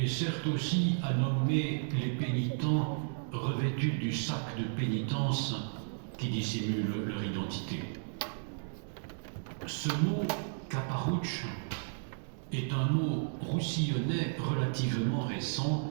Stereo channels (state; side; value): silent; left; digital silence